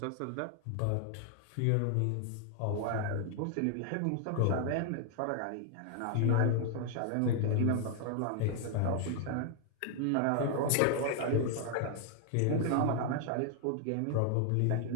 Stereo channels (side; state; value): both; different; correlation 0.00